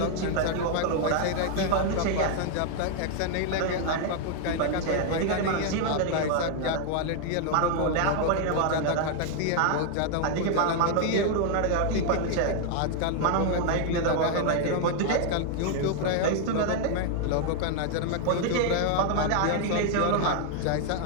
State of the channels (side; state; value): both; different; correlation 0.00